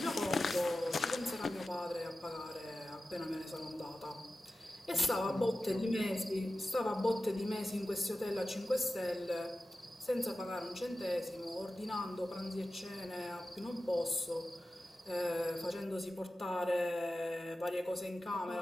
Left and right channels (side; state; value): both; normal; correlation 0.93